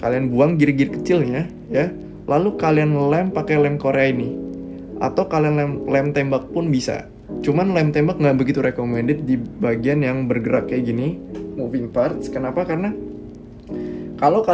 Kalian buang gear-gear kecilnya ya. Lalu kalian lem pakai lem Korea ini. Atau kalian lem tembak pun bisa. Cuman lem tembak nggak begitu recommended di bagian yang bergerak kayak gini, moving parts. Kenapa? Karena kalau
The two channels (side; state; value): both; identical; correlation 1.00